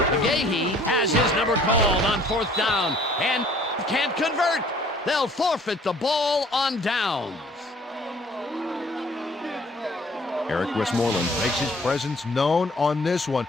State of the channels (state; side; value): normal; both; correlation 0.55